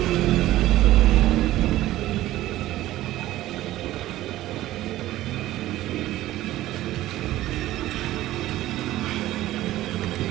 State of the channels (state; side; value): quieter; left; 15.3 dB